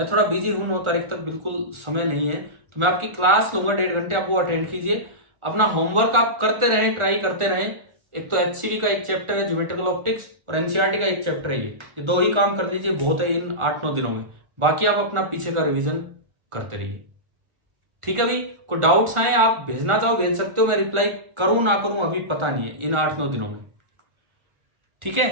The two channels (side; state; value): left; late; 1.4 ms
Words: थोड़ा बिजी हूं, 9 तारीख तक बिल्कुल समय नहीं है, तो मैं आपकी क्लास लूंगा 1.5 घंटे, आप वो अटेंड कीजिए। अपना होमवर्क आप करते रहें, ट्राई करते रहें। एक तो HCV का एक चैप्टर है ज्योमेट्रिकल ऑप्टिक्स, और NCERT का एक चैप्टर है, ये 2 ही काम कर लीजिए, बहुत है इन 8-9 दिनों में। बाकी आप अपना पीछे का रिवीजन करते रहिए, ठीक है भाई। कोई डाउट्स आए आप भेजना चाहो भेज सकते हो, मैं रिप्लाई करूं ना करूं अभी पता नहीं है इन 8-9 दिनों में, ठीक है।